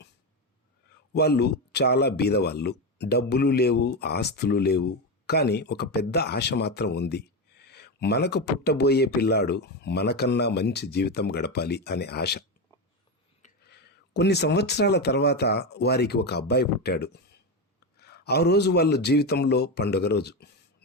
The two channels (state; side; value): normal; both; correlation 0.14